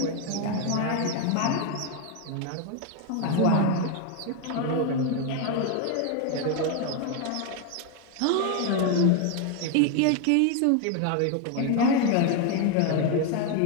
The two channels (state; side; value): different; both; correlation 0.01